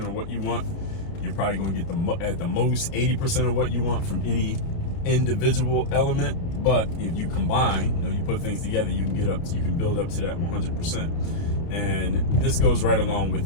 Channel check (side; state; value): right; late; 30 ms